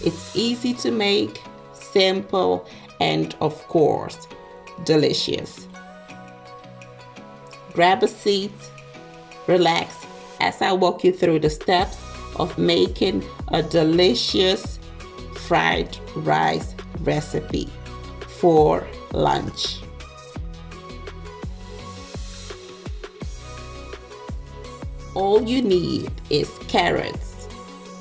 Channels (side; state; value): both; identical; correlation 1.00